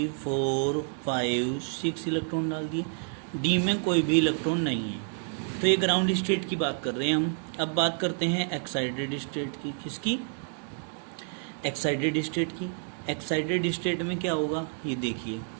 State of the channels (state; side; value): silent; left; 56 dB below the other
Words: 4 5 6 इलेक्ट्रॉन डाल दिए। D में कोई भी इलेक्ट्रॉन नहीं है। तो ये ग्राउंड स्टेट की बात कर रहे हैं हम। अब बात करते हैं एक्साइटेड स्टेट की। किसकी, एक्साइटेड स्टेट की। एक्साइटेड स्टेट में क्या होगा, ये देखिए,